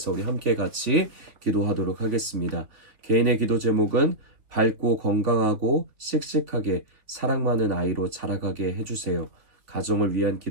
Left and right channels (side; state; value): left; late; 3.2 ms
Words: 우리 함께 같이 기도하도록 하겠습니다. 개인의 기도 제목은 밝고 건강하고 씩씩하게 사랑 많은 아이로 자라가게 해주세요. 가정을 위한